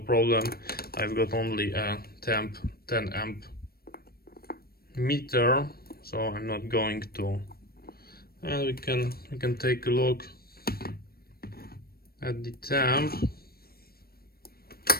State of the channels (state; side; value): late; right; 0.44 ms